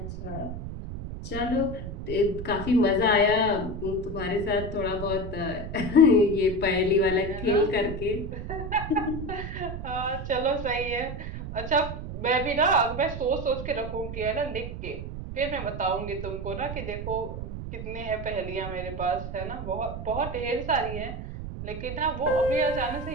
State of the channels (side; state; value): right; noise; rumble, 7 dB below the sound